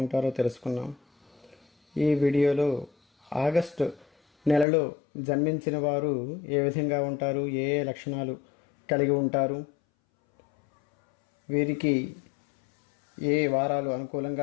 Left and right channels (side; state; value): right; drops out; at 4.7 s